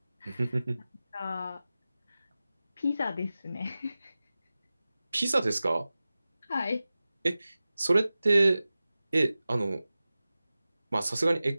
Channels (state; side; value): inverted; both; correlation -0.96